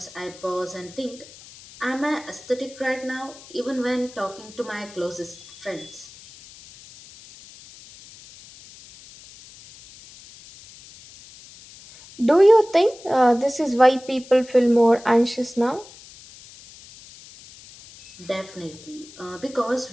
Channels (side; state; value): left; noise; hiss, 20 dB below the sound